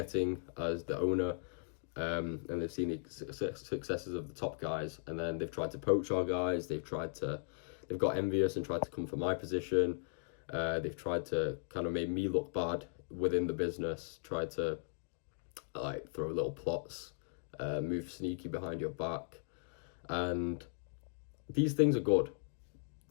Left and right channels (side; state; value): right; silent; digital silence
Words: as the owner, and they've seen the successes of the top guys, and then they've tried to poach our guys. They've got envious and tried to come for my position. They've tried to kind of make me look bad within the business, tried to like throw little plots, move sneaky behind your back, and these things are good.